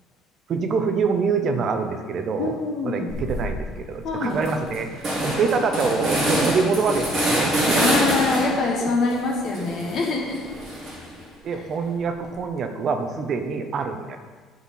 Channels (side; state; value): both; normal; correlation 0.61